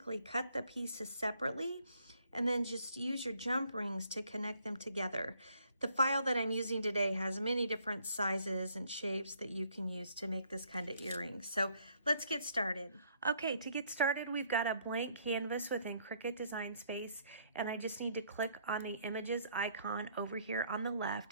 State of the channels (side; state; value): both; inverted; correlation -0.66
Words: cut the pieces separately and then just use your jump rings to connect them together. The file that I'm using today has many different sizes and shapes that you can use to make this kind of earring. So let's get started. Okay, to get started, we've got a blank canvas within Cricut Design Space, and I just need to click on the images icon over here on the